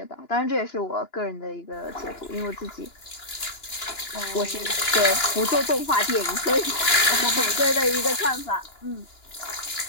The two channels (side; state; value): right; late; 2.9 ms